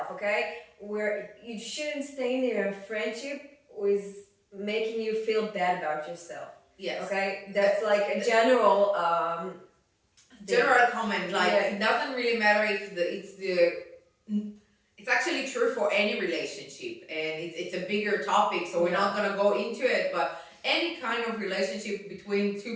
Okay, where you shouldn't stay in a friendship with making you feel bad about yourself. Yes. Okay, that's like a general general comment. Like it doesn't really matter if it's actually true for any relationship, and it's a bigger topic, so we're not gonna go into it. But any kind of relationship between two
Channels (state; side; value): identical; both; correlation 1.00